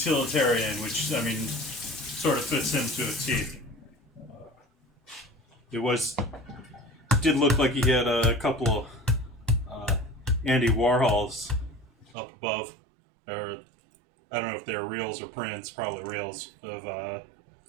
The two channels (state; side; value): drops out; left; at 12.2 s